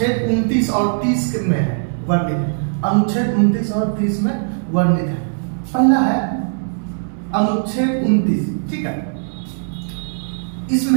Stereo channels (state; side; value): silent; left; digital silence